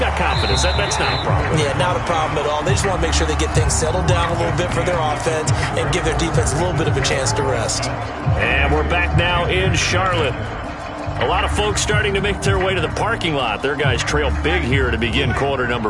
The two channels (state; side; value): identical; both; correlation 1.00